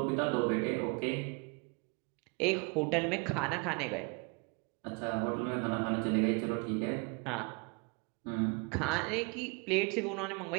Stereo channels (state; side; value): quieter; left; 31.5 dB